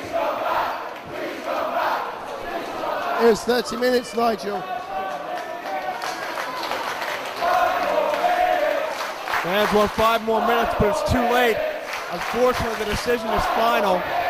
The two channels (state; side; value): identical; both; correlation 1.00